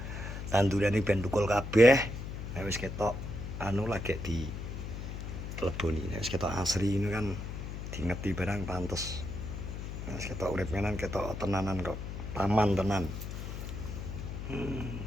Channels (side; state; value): left; noise; hum, 7 dB below the sound